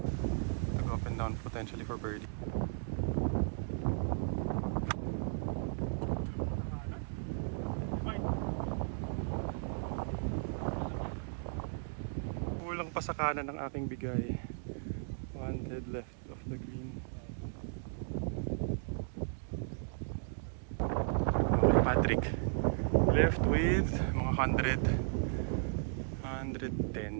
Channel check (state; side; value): silent; left; digital silence